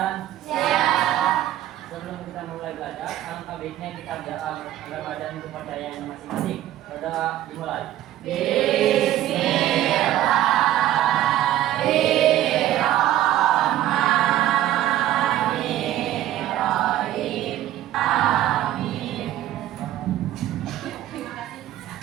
Siap. Sebelum kita mulai belajar, alangkah baiknya kita berdoa agar badan kepercayaan masing-masing. Berdoa dimulai. Bismillahirrahmanirrahim. Amin. Terima kasih.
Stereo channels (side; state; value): left; quieter; 13.2 dB